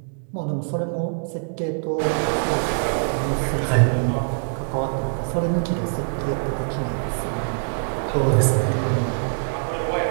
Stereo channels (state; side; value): silent; left; digital silence